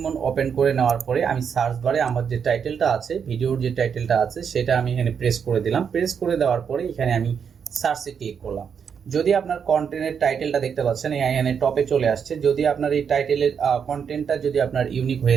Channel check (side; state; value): left; quieter; 7.0 dB